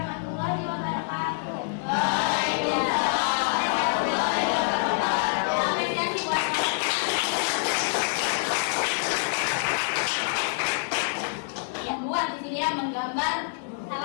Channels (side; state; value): right; silent; 59 dB below the other